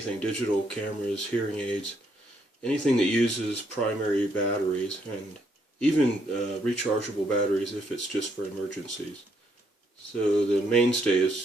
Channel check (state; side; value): normal; both; correlation 0.73